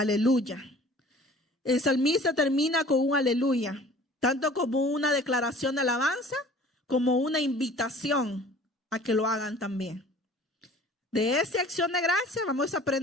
El salmista termina con un aleluya, tanto como una declaración de alabanza, como una invitación a que lo hagan también. De esa acción de gracia vamos a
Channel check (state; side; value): normal; both; correlation 0.48